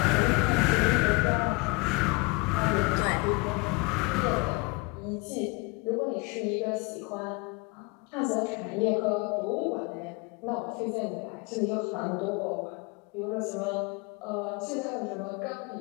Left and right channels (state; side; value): quieter; right; 27.5 dB